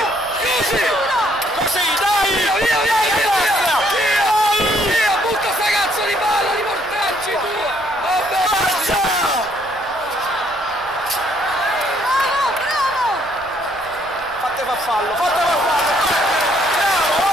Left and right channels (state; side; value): noise; left; rumble, 24 dB below the sound